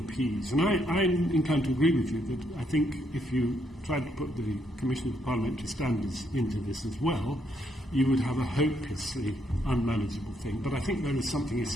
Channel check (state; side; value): normal; both; correlation 0.75